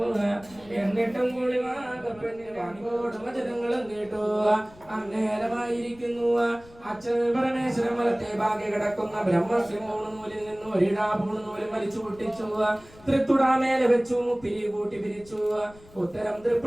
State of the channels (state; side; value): noise; left; rumble, 24 dB below the sound